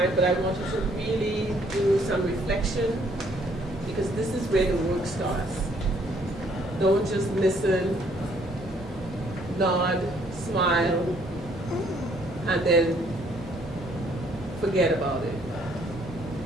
But I want you to really do some reflection because this is where the work starts. Don't just listen, nod, smile, and then forget about it.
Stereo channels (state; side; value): normal; both; correlation 0.64